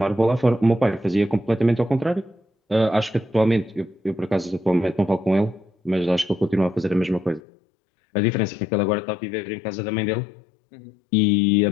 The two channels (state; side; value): drops out; right; at 7.4 s